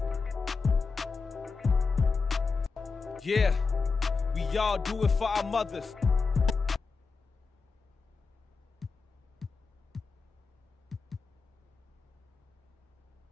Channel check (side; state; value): right; quieter; 4.6 dB